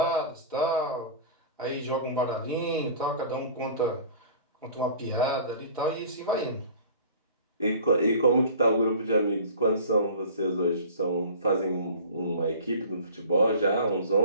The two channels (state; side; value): inverted; both; correlation -0.42